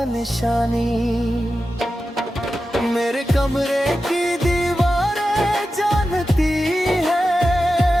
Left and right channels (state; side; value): normal; both; correlation 0.92